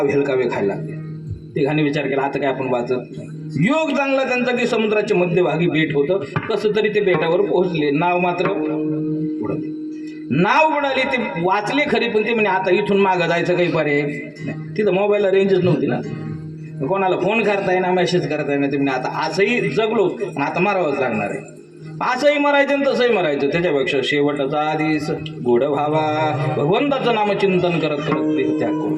हेलकावे खायला लागले. तिघांनी विचार केला आता काय आपण वाचत. योग चांगला त्यांचा की समुद्राच्या मध्यभागी बेट होतं. कसं तरी ते बेटावर पोहोचले. नाव मात्र उडाली. नाव उडाली. ते वाचले खरी, पण ते म्हणे आता इथून मागं जायचं काही पर्याय नाही. तिथं मोबाईलला रेंजच नव्हती ना, कोणाला फोन करता येईना, मेसेज करता येईना. ते म्हणे आता असंही जगलो आणि आता मारावंच लागणार आहे. असंही मरायचं आणि तसंही मरायचं. त्याच्यापेक्षा शेवटचा आधीच गोड व्हावा, भगवंताचं नामचिंतन करत करत ते त्याग करू.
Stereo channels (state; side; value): identical; both; correlation 1.00